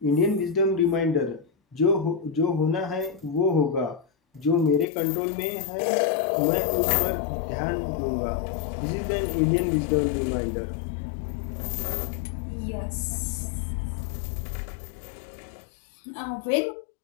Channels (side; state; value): right; drops out; at 4.9 s